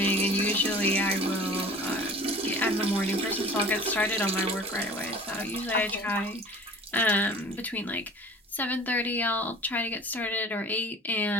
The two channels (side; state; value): both; normal; correlation 0.44